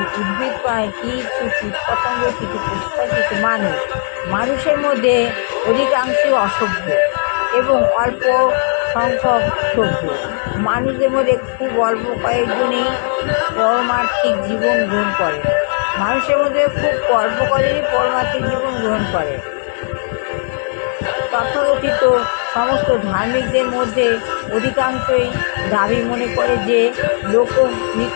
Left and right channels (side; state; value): right; silent; digital silence